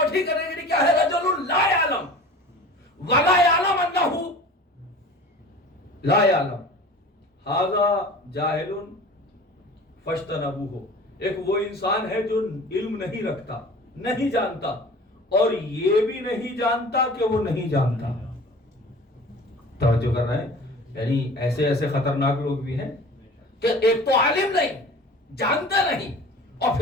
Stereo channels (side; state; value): both; normal; correlation 0.41